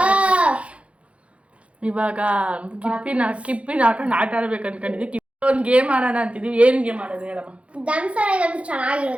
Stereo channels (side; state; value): left; late; 0.062 ms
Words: ಇವಾಗ ಕಿಪ್ಪಿನ ಹಾಕೊಂಡು ಆಟ ಆಡ್ಬೇಕು ಅನ್ಕೊಂಡಿದ್ವಿ. ಕಿಪ್ಪಿ ಒಂದು ಗೇಮ್ ಆಡೋಣ ಅಂತಿದ್ವಿ. ಏನ್ ಗೇಮ್ ಆಡೋದು ಹೇಳಮ್ಮ? ದಮ್ಸರ